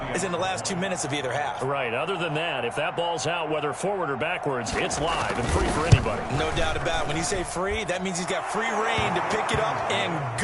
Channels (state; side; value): identical; both; correlation 1.00